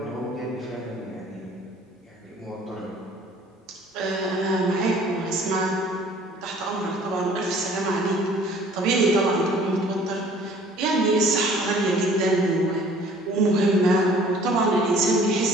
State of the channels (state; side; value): normal; both; correlation 0.53